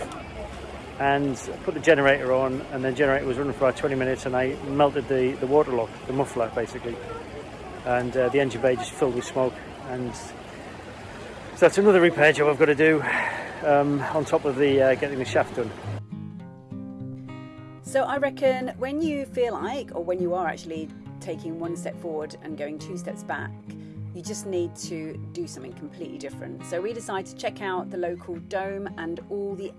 and put the generator on, and the generator was running for about 20 minutes, and I melted the water lock, the muffler basically. and the engine bay just filled with smoke. And so that's another repair job I've got to do on top of the getting the shaft done. So I reckon when you feel like, or when you are actually taking one step forward and going 2 steps back, you just need to do something completely different. So we decided to check out the local dome and all the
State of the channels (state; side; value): identical; both; correlation 1.00